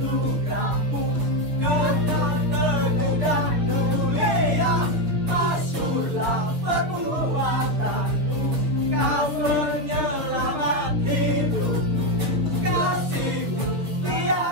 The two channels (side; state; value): left; late; 6.4 ms